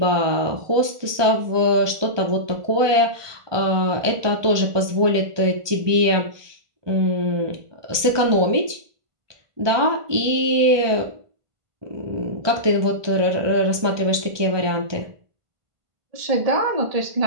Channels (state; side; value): late; left; 1.2 ms